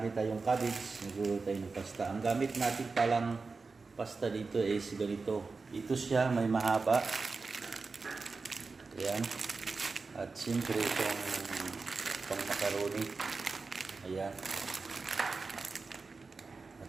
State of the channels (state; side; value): quieter; left; 4.2 dB